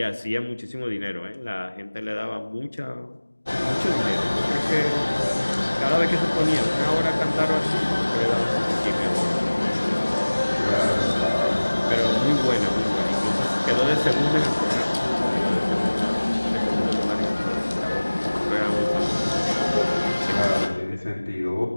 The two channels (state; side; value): inverted; both; correlation -1.00